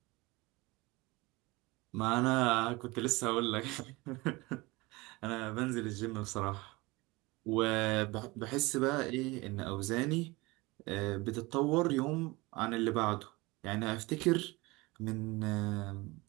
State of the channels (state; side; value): quieter; left; 23.0 dB